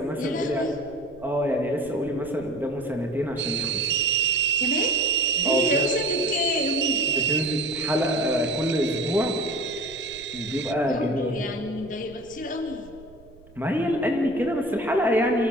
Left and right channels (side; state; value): right; noise; rumble, 23 dB below the sound